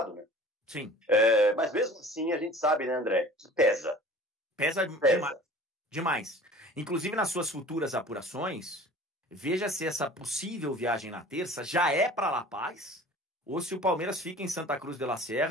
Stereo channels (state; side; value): normal; both; correlation 0.44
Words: né? Sim. Mas mesmo assim a gente sabe, né, André, que pesa. Pesa. Demais. Inclusive nas suas futuras apurações, veja se essa possível viagem na terça já é para La Paz ou se o Palmeiras fica em Santa Cruz de la